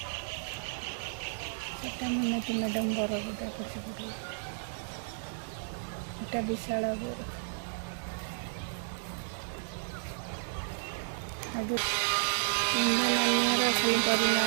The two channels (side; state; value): left; silent; digital silence